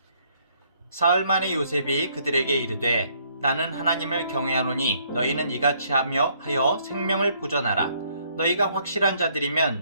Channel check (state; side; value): inverted; both; correlation -0.67